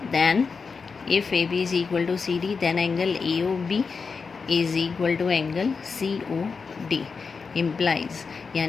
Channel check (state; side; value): quieter; right; 5.1 dB